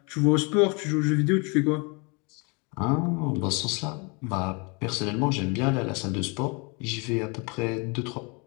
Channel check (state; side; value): quieter; right; 31.1 dB